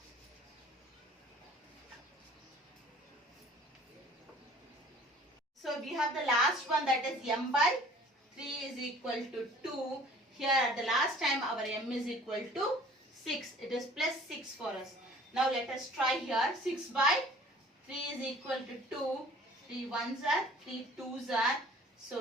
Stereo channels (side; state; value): both; normal; correlation 0.51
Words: So we have the last one, that is m by 3 is equal to 2. Here at the last time our m is equal to 6. It is plus 6 for us. Now let us try here. 6 by 3 is equal to 2. 3 ones are, 3 twos are.